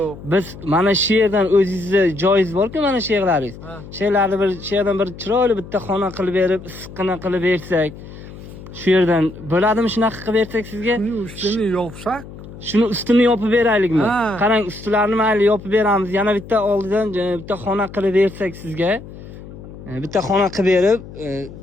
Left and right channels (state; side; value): noise; left; hum, 15 dB below the sound